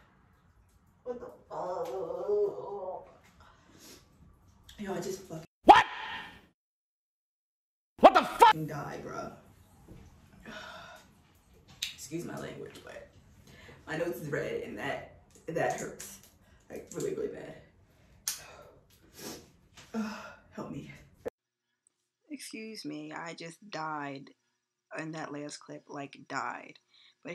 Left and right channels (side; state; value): both; identical; correlation 1.00